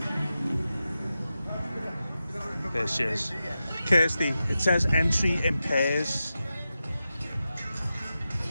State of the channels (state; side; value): inverted; both; correlation -0.91